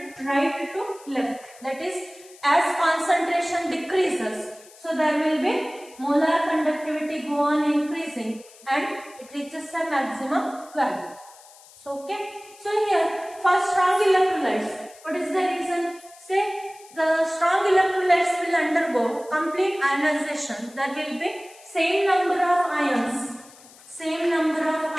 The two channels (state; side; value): noise; left; hiss, 23 dB below the sound